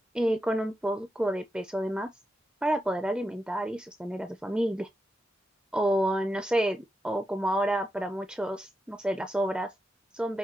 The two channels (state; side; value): normal; both; correlation 0.88